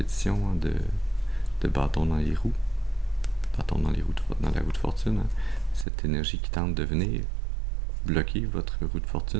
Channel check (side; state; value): left; drops out; at 5.9 s